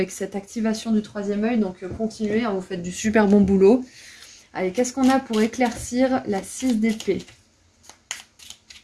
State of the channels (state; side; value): identical; both; correlation 1.00